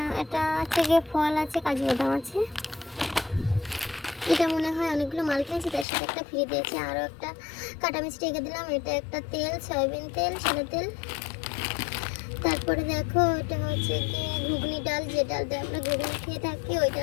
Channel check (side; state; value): right; drops out; at 5.9 s